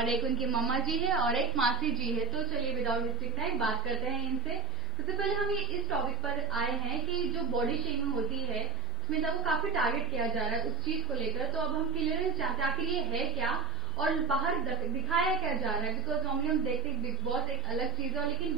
एक उनकी मम्मा जी है और एक मासी जी है। तो चलिए विदाउट वेस्टिंग टाइम बात करते हैं इनसे। सबसे पहले हम इस टॉपिक पर आए हैं कि जो बॉडी शेमिंग होती है स्मिता को काफी टारगेट किया जा रहा है उस चीज को लेकर। तो अब हम क्लियरेंस चाहते हैं आखिर ये है क्या और बाहर दिखाया क्या जा रहा है। बिकॉज नॉर्मली हम देखते हैं बिग बॉस एक अलग चीज है लेकिन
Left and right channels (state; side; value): normal; both; correlation 0.40